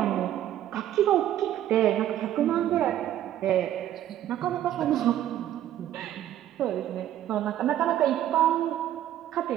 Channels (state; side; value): quieter; left; 12.0 dB